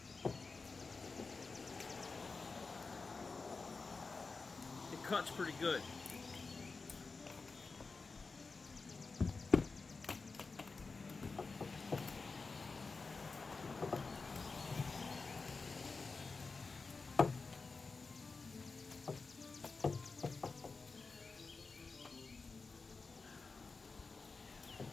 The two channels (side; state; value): right; quieter; 4.2 dB